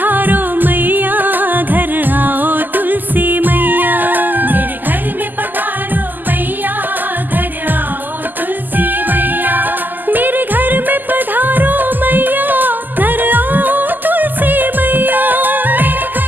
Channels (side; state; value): left; late; 0.087 ms